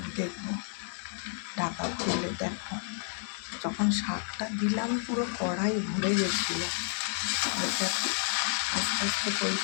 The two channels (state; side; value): silent; right; 57 dB below the other